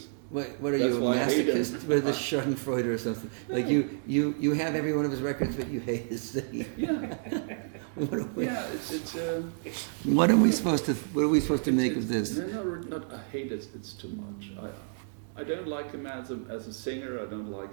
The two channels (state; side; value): silent; left; digital silence